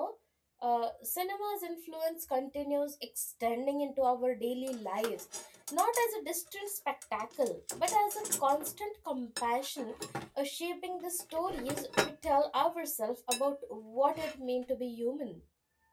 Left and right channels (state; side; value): identical; both; correlation 1.00